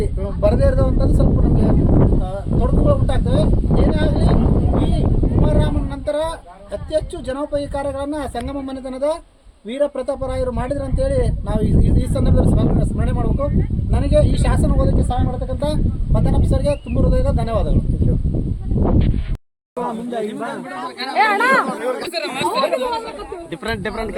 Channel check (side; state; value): both; identical; correlation 1.00